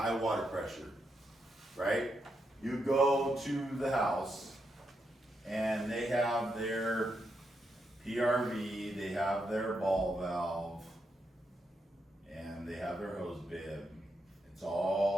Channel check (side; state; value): both; normal; correlation 0.82